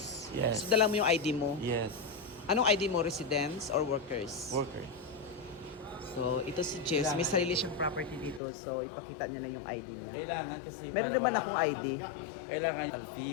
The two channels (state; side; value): drops out; right; at 8.4 s